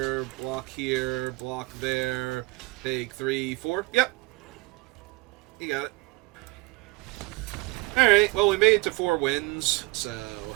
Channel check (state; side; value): quieter; left; 23.7 dB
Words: block there, take 3, 4. Yep. You got it. Alright, well, we made it to 4 wins, so...